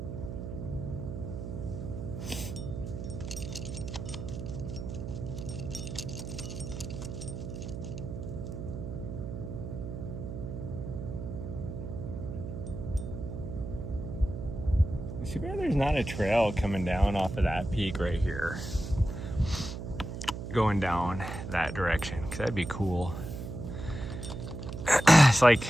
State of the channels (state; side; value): noise; right; hum, 7 dB below the sound